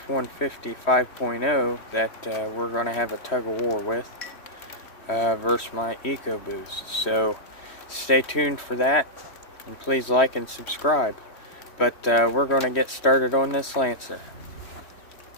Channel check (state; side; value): late; right; 3.1 ms